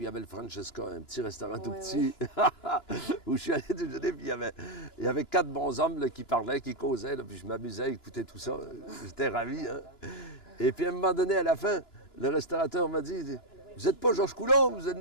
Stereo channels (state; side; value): late; right; 2.9 ms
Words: il y avait le Francesca, un petit restaurant tout petit, où je suis allé déjeuner, puis il y avait 4 bons hommes là, qui parlaient, qui causaient, là, puis je m'amusais à écouter tout ça. J'étais ravi. Hein? Et puis à un moment donné, à la fin, le restaurateur m'a dit, « Vous n'êtes pas Georges Coulombe, vous êtes